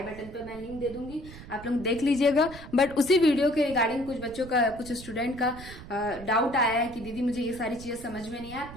बटन पे मैं लिंक दे दूंगी, आप लोग देख लीजिएगा। बट उसी वीडियो के रिगार्डिंग कुछ बच्चों का, कुछ स्टूडेंट का डाउट आया है कि दीदी मुझे ये सारी चीजें समझ में नहीं आया,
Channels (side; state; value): right; noise; rumble, 15 dB below the sound